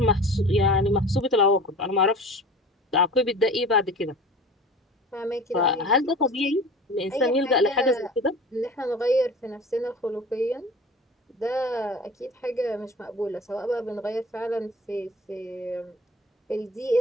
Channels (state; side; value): normal; both; correlation 0.39